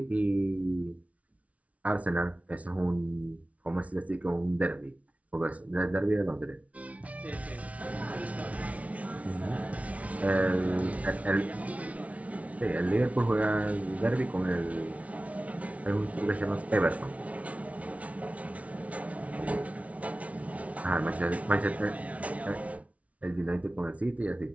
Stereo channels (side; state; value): left; late; 0.066 ms